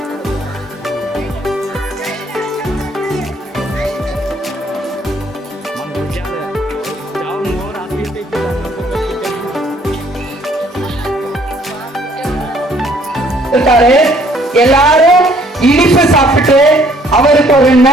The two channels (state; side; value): normal; both; correlation 0.61